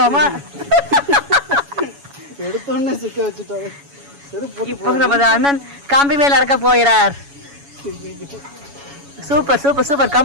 எடுத்தோடனே சிக்க வச்சுட்டாரு. இப்போ நமது அண்ணன் காம்பி மேல நடக்க போகிறார். Super super super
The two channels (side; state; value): left; late; 7.1 ms